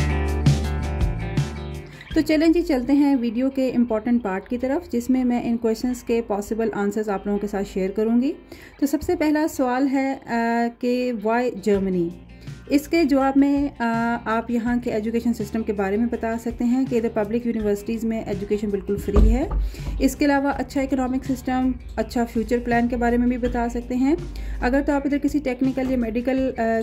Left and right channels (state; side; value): identical; both; correlation 1.00